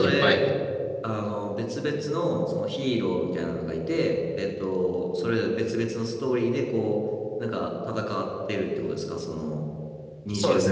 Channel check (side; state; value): both; identical; correlation 1.00